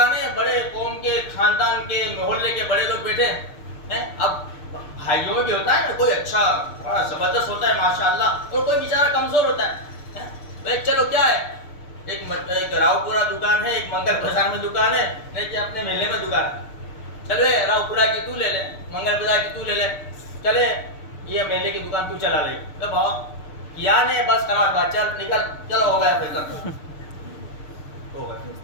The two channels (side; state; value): right; late; 6.7 ms